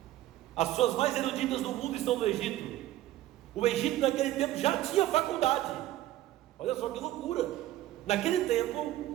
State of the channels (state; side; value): quieter; left; 14.6 dB